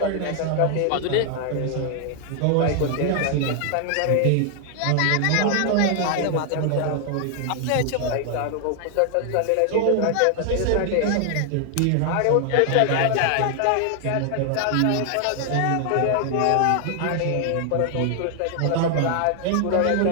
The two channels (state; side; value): different; both; correlation 0.00